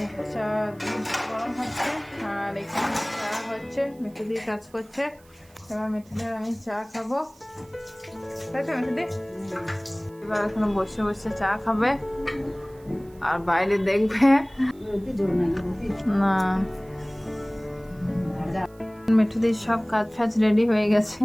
চা গরম হচ্ছে, আর এখানে চা হচ্ছে, মিঠুদি কাজ করছে। এবার মিঠুদির আমি চা খাবো, তাই তো মিঠুদি? এবার এখানে বসে বসে চা খাবে আর বাইরে দেখবে না। মিঠুদির সব কাজ ফাজ রেডি হয়ে গেছে,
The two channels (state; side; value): noise; right; hiss, 29 dB below the sound